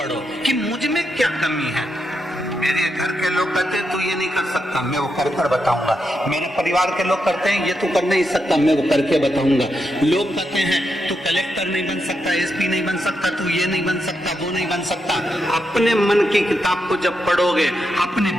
कि मुझ में क्या कमी है। मेरे घर के लोग कहते हैं तू ये नहीं कर सकता, मैं वो कर कर बताऊंगा। मेरे परिवार के लोग करते हैं ये तू कर नहीं सकता, मैं वो करके बताऊंगा। लोग कहते हैं तू कलेक्टर नहीं बन सकता, एसपी नहीं बन सकता, तू ये नहीं बन सकता, वो नहीं बन सकता। अपने मन की किताब को जब पढ़ोगे, अपने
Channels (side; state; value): both; normal; correlation 0.83